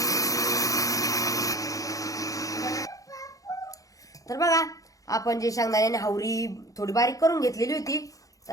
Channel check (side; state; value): right; late; 0.17 ms